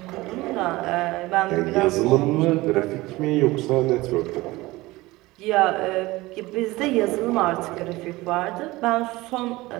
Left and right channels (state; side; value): quieter; left; 19.9 dB